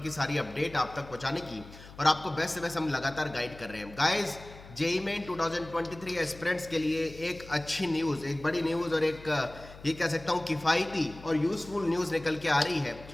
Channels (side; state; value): left; noise; hum, 18 dB below the sound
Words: सारी अपडेट आप तक पहुंचाने की और आपको बेस्ट से बेस्ट हम लगातार गाइड कर रहे हैं। गाइस, जेईई मेन 2023 एस्पिरेंट्स के लिए एक अच्छी न्यूज़, एक बड़ी न्यूज़ और एक ये कह सकता हूँ किफ़ायती और यूज़फुल न्यूज़ निकल के आ रही है